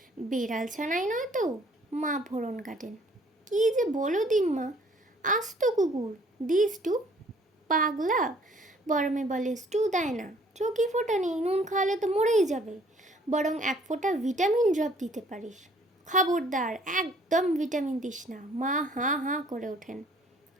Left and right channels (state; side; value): normal; both; correlation 0.59